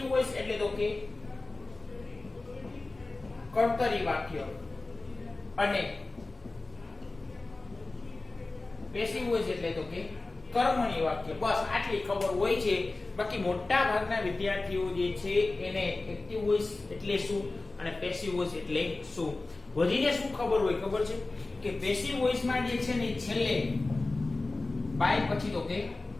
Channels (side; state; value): right; quieter; 3.2 dB